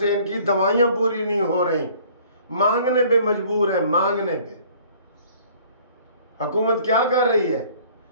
इनकी दवाइयाँ पूरी नहीं हो रही, मांगने पे मजबूर है, मांगने पे। हुकूमत क्या कर रही है?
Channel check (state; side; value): inverted; both; correlation -0.54